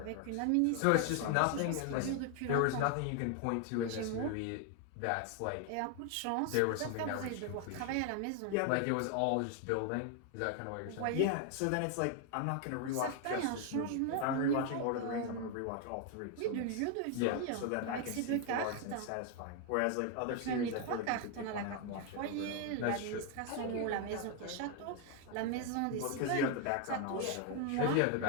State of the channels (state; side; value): different; both; correlation 0.00